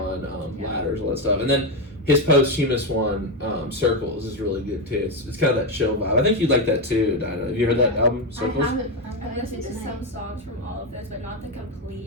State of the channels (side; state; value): both; normal; correlation 0.09